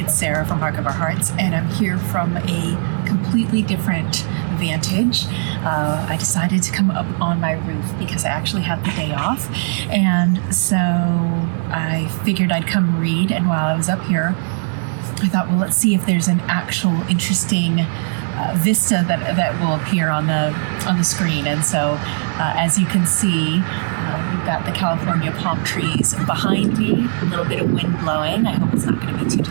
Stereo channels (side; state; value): left; silent; digital silence